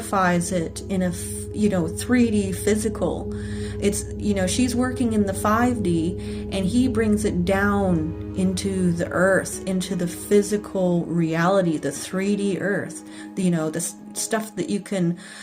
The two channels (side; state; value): both; identical; correlation 1.00